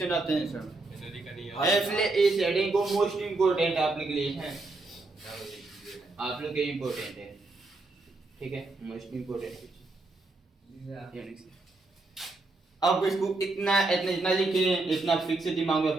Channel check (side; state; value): left; quieter; 3.2 dB